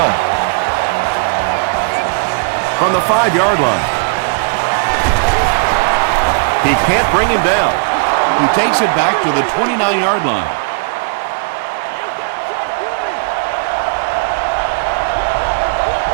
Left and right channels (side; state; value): left; quieter; 35.4 dB